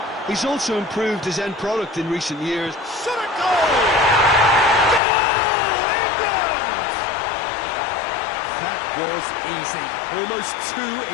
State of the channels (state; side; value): drops out; right; at 5.0 s